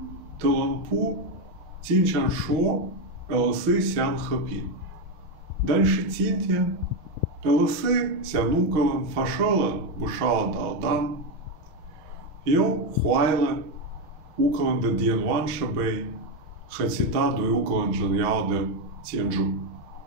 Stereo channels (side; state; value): left; late; 6.1 ms